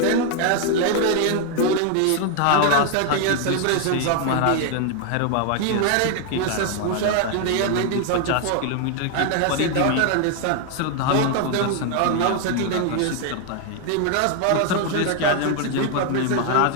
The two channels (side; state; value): both; different; correlation 0.00